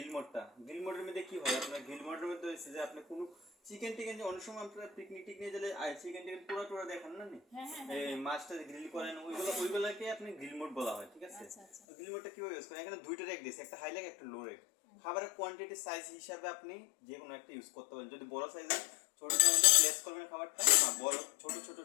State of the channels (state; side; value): drops out; right; at 11.7 s